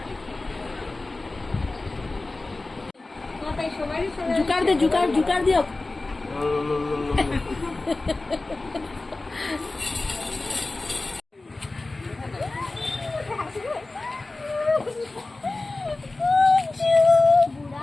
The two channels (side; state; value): right; quieter; 3.2 dB